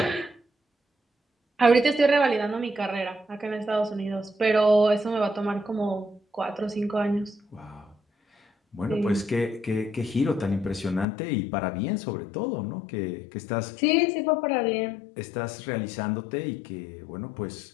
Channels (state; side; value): drops out; right; at 11.1 s